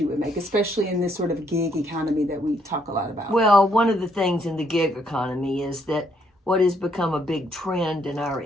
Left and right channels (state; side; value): normal; both; correlation 0.71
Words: you would make, especially in this sort of gig economy that we talk a lot about? Well, one of the things in the gig economy is that what has become a big trend in our